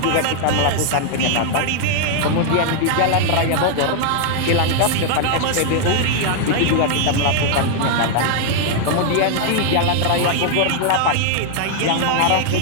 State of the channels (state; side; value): different; both; correlation 0.00